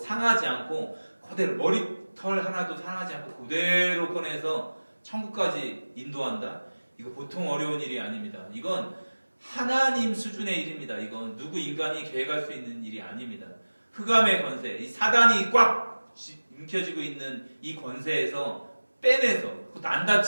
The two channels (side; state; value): both; inverted; correlation -1.00